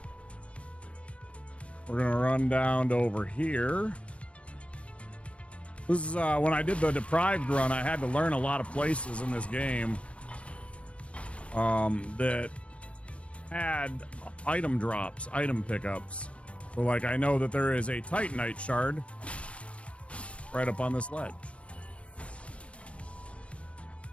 We're going to run down to over here. This is when I did the Deprived run, I had to learn a lot of places in this game that had item drops, item pickups. So, like, I know that there is a Titanite shard right up on this ledge.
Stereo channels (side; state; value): right; late; 0.062 ms